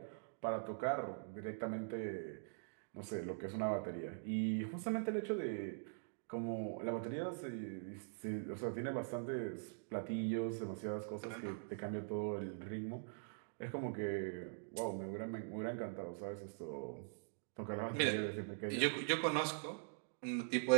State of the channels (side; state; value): left; silent; digital silence